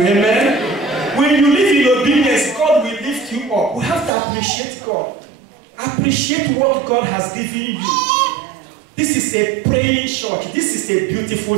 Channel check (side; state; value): left; drops out; at 4.1 s